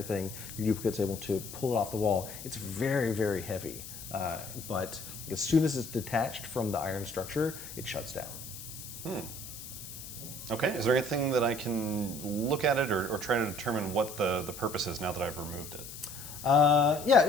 your duplicate's able to pull it off the wall. It's very, very heavy, but as soon as it's detached from the iron structure, it shuts down. Okay, is there anything that I can look at it or try to determine what the purpose is now that I've removed it? Yeah,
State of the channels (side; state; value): left; noise; hiss, 12 dB below the sound